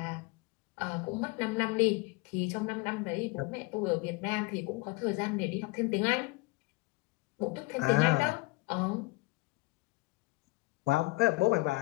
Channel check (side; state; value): right; quieter; 23.8 dB